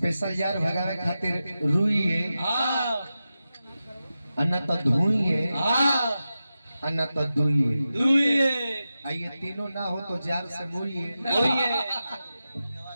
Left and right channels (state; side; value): inverted; both; correlation -0.92